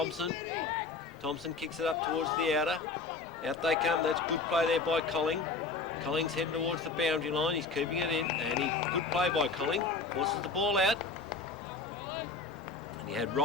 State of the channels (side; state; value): right; quieter; 4.1 dB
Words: Thompson kicks it up towards the outer. Out they come. That's good play there by Colling. Colling's heading towards the boundary line. He's keeping it in, and good play by Colling. Forces the ball out. And he had